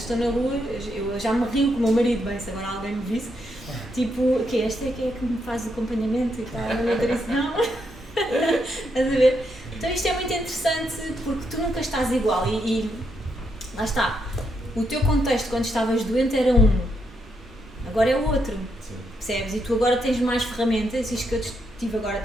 estou na rua, eu já me rio com o meu marido, bem, se agora alguém me visse, tipo, que esta é que me faz o acompanhamento e tal, não é isso, não. Estás a ver? Então isto é muito interessante porque tu nunca estás igual e lá está, o teu contexto quando estavas doente era um, agora é o outro. Sim. Percebes? E tu agora tens mais ferramentas, isto que eu estive agora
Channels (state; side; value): normal; both; correlation 0.79